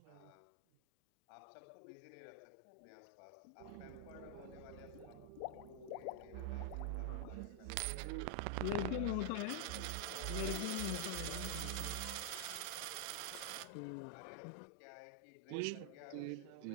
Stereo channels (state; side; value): different; both; correlation 0.00